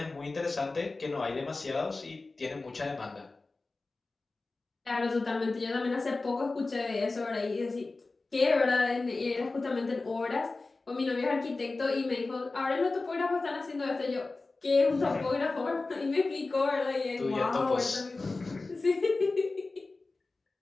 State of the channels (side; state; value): right; quieter; 3.5 dB